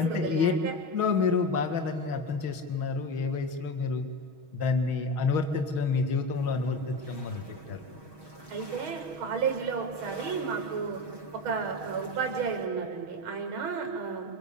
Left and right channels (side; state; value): left; late; 6.3 ms